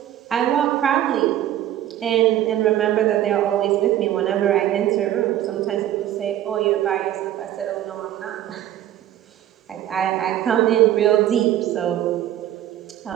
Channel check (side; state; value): left; quieter; 12.4 dB